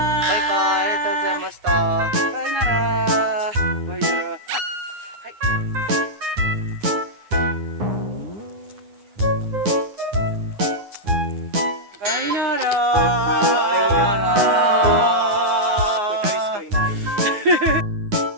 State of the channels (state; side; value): late; left; 9.7 ms